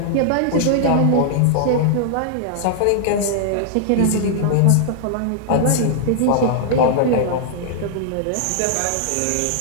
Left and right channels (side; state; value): both; different; correlation -0.01